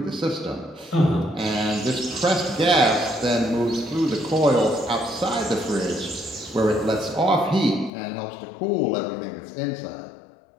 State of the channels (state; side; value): drops out; right; at 7.9 s